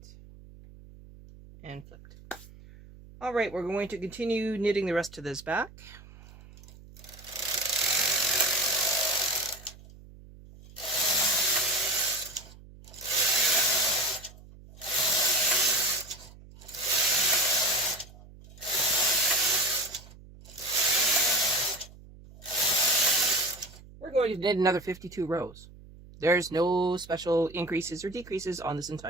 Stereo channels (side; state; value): right; noise; hum, 20 dB below the sound